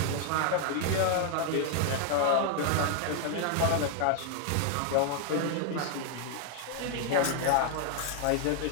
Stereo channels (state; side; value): different; both; correlation 0.00